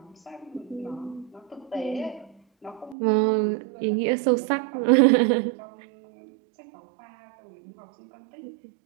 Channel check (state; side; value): drops out; left; at 3.0 s